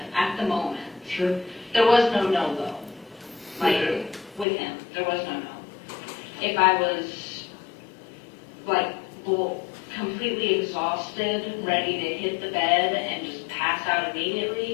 at the moment. Sure. There was no no, though. With him, there was no no. If I was, completely exhausted, ready to hit the bed and just pass out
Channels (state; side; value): drops out; right; at 4.5 s